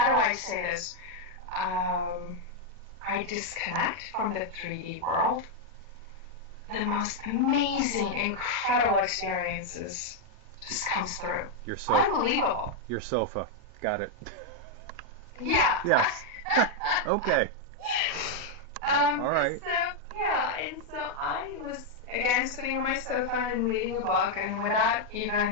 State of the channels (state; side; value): normal; both; correlation 0.00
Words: do I say this? I disconnect from the 3D world. The most amazing, incredible experiences just comes through. Your sofa. Unbelievable. Your sofa. Got it. Yeah. Yes. Okay. All right. And so I was again sitting on my sofa and reading a book, and without